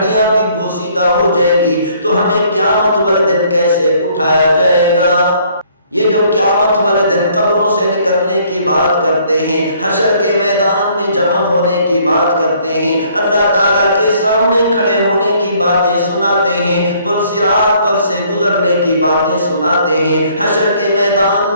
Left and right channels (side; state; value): both; inverted; correlation -0.62